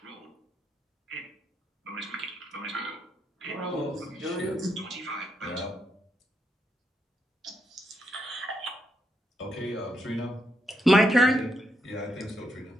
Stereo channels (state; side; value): normal; both; correlation 0.79